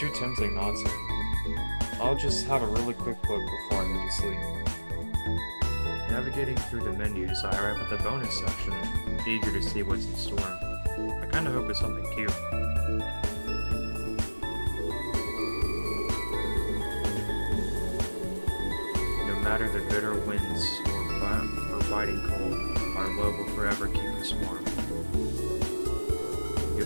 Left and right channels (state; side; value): inverted; both; correlation -1.00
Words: tempting not to. I'll just have a really quick look before I go to sleep. Navigating through the menus, I arrive at the bonus section, eager to see what's in store. I kinda hope it's something cute. No matter the bitter winds or biting cold, our love will forever keep us warm.